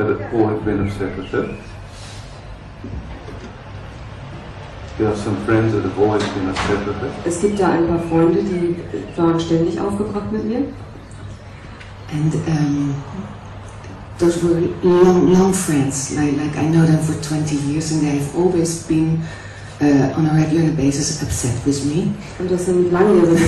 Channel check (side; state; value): both; identical; correlation 1.00